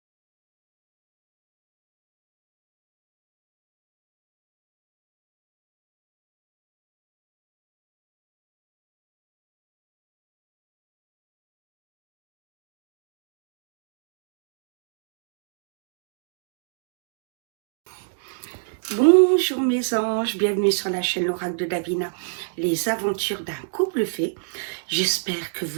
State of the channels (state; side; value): silent; left; digital silence